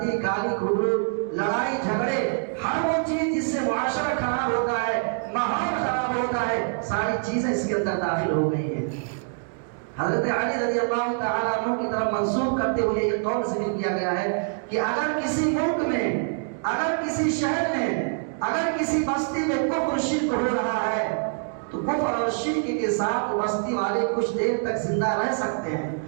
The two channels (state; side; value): silent; left; digital silence